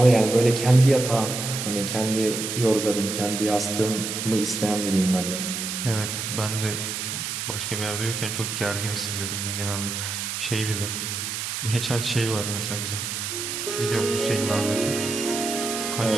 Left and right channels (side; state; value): right; noise; hiss, 4 dB below the sound